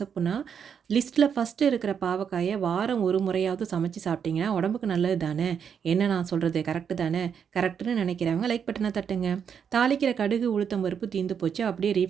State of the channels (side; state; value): left; quieter; 7.4 dB